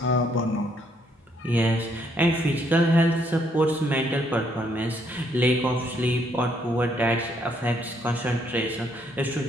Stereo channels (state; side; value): normal; both; correlation 0.70